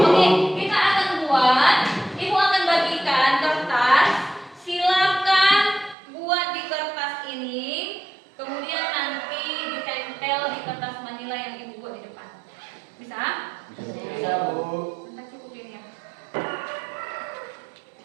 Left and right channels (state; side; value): drops out; left; at 6.0 s